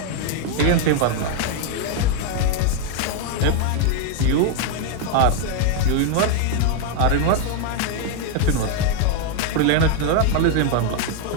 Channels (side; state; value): both; different; correlation 0.01